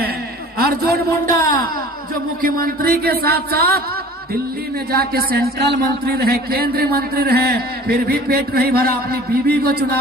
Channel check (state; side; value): normal; both; correlation 0.44